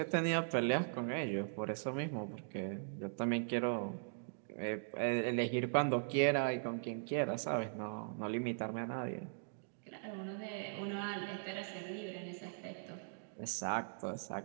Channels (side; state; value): left; silent; digital silence